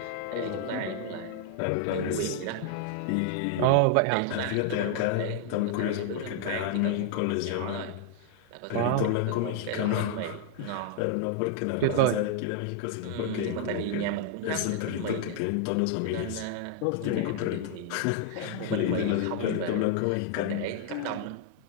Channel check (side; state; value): both; different; correlation 0.00